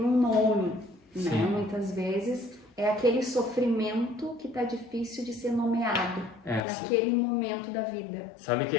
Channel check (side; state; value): right; drops out; at 6.7 s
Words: um nome, né? Muitas vezes é aquele sofrimento que está difícil de ser nomeado naquele momento da vida. Sabe que